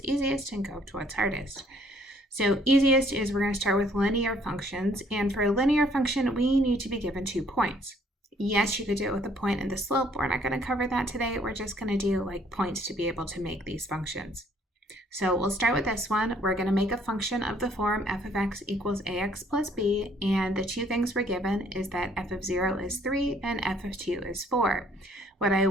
easiest and go to what's hardest. So easiest is we're going to start with linear functions, and for a linear function we need to be given 2 points. Yes, you could do it with a point and the slope. We're not going to cover that today. We're just going to do like points to be able to make these functions. So we'll start with this one. We're going to make a function of the form f of x equals ax plus b, and the two things we're given is that f of 0 is 3 and f of 2 is 4. What I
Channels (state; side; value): normal; both; correlation 0.63